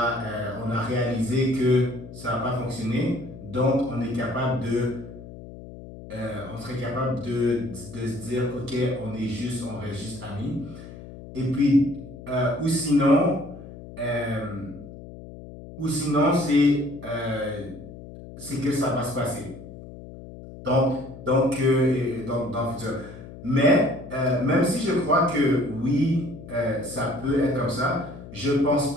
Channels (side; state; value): left; noise; hum, 15 dB below the sound